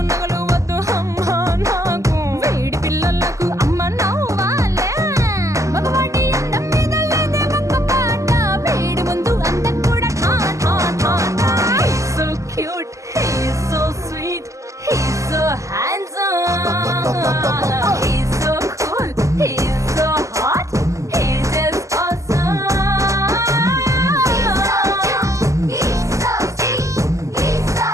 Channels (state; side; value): late; left; 0.16 ms